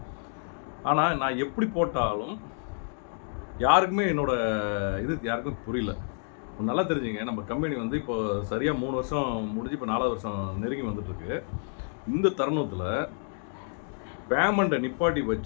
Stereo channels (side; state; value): right; silent; 59 dB below the other